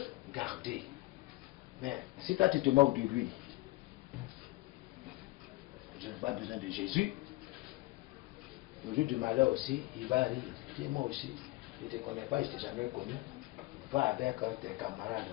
garder. Mais si toi tu te moques de lui, je n'ai pas besoin de Jésus. Le jour du malheur aussi, il va rire. Dis moi aussi, je ne te connais pas, je ne t'ai jamais connu. Va avec tes camarades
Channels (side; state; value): right; quieter; 20.5 dB